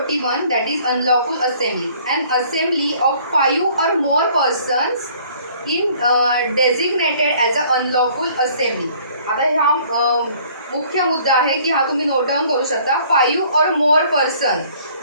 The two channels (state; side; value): inverted; both; correlation -0.57